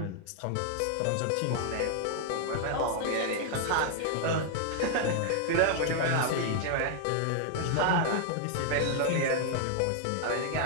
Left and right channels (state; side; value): different; both; correlation 0.00